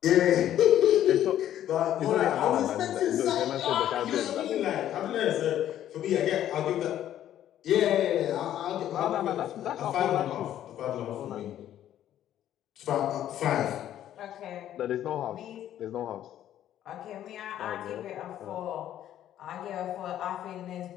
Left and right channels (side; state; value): right; quieter; 11.6 dB